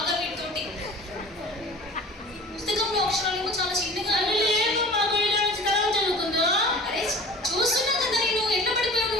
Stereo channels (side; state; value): both; normal; correlation 0.42